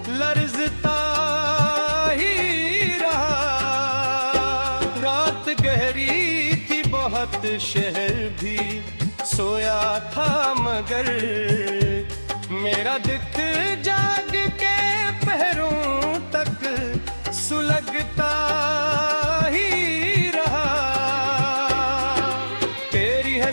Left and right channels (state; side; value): inverted; both; correlation -1.00